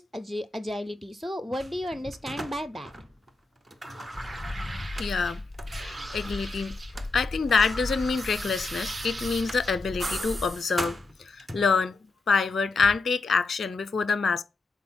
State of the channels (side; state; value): right; quieter; 3.7 dB